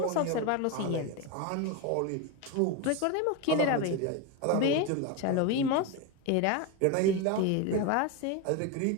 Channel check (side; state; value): both; different; correlation 0.03